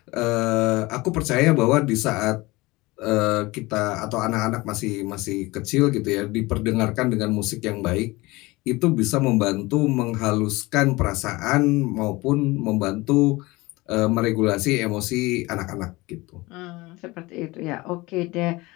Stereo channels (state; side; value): quieter; right; 21.8 dB